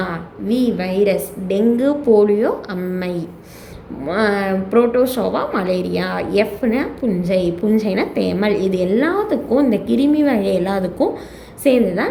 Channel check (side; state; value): both; identical; correlation 1.00